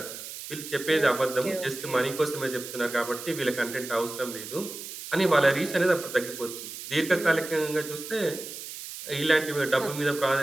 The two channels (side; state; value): right; noise; hiss, 10 dB below the sound